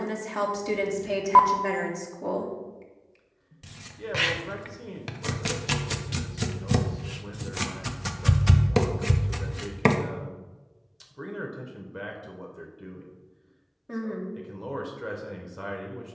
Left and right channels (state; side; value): identical; both; correlation 1.00